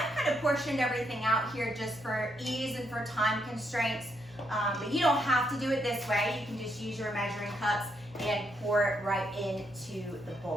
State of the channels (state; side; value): normal; both; correlation 0.77